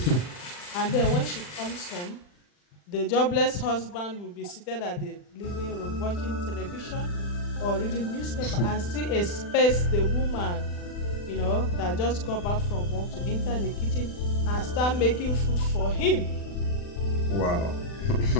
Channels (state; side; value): late; right; 40 ms